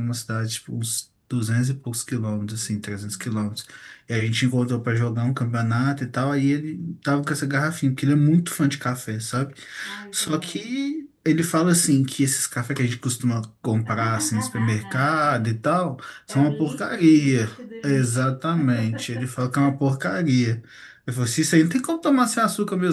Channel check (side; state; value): both; identical; correlation 1.00